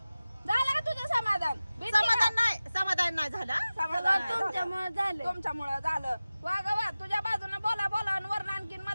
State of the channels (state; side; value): inverted; both; correlation -0.96